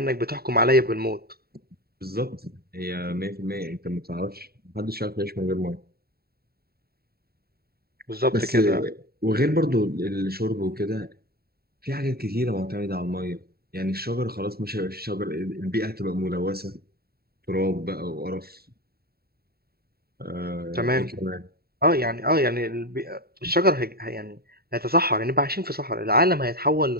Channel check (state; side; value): late; left; 0.45 ms